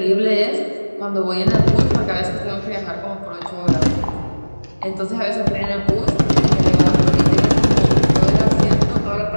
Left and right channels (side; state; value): both; inverted; correlation -1.00